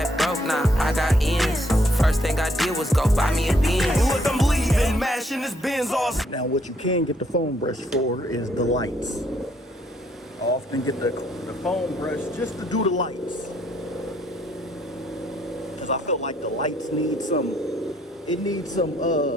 broke, now I got ends. First thing I did was go buy me a Benz. Look, I'm leaving, mashing this Benz off. Now what you can get the foam brush for is the lights. I often get the foam brush just to do the lights, because I feel like the lights need some, it needs some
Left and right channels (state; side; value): normal; both; correlation 0.69